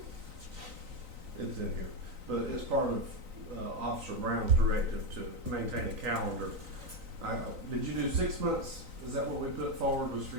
It's in here, but it's part of Officer Brown's directive to maintain a calendar. Did you do 6 months? Is that what we put forward, was for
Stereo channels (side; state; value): left; late; 3.9 ms